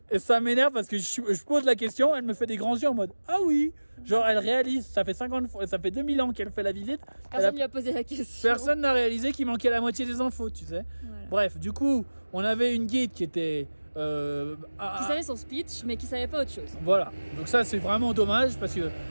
et ça m'énerve parce que je pose la question, elle me fait des grands yeux en mode, ah oui, genre elle réalise, ça fait 2000 ans qu'elle fait la visite. Personne lui a posé la question. Personne n'a réalisé qu'il manquait la moitié des infos, tu sais. Voilà. Bref, du coup, on avait une guide qui était... qui savait son speech, mais qui savait pas autre chose. Voilà, donc ça c'est vraiment dommage parce que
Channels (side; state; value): both; inverted; correlation -1.00